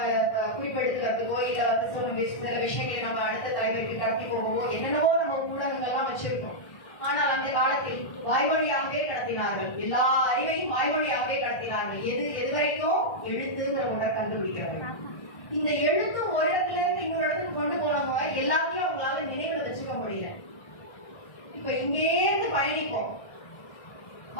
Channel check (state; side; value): late; right; 1.6 ms